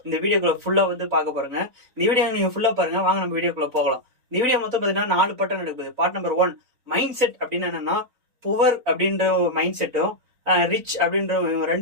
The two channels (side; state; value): left; late; 3.9 ms